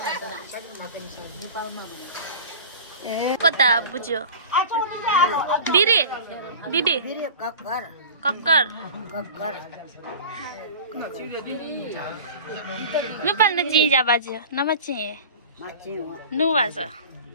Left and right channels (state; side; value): inverted; both; correlation -0.38